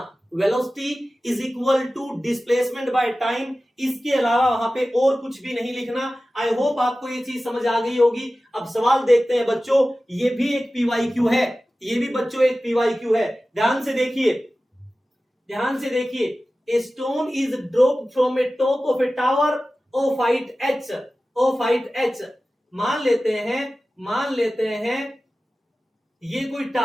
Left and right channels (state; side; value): normal; both; correlation 0.96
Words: Velocity is equal to displacement by time, इसके अलावा वहां पे और कुछ भी नहीं लिखना। आई होप आपको ये चीज समझ आ गई होगी। अब सवाल देखते हैं बच्चों, ये भी एक पीवाईक्यू है, ये भी बच्चों एक पीवाईक्यू है। ध्यान से देखिए, ध्यान से देखिए। A stone is dropped from a top of a tower of height h, of height h। मान लेते हैं ये कोई